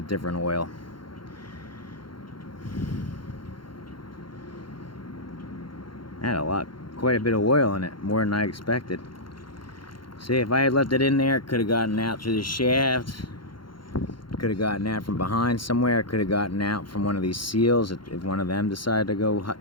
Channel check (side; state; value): right; late; 0.73 ms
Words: different oil. Had quite a bit of oil in it, more than I expected. See, if I had left it in there, it could have gotten out through the shaft. Could have gotten out from behind somewhere. Could have gotten out from one of these seals if one of them decided to go,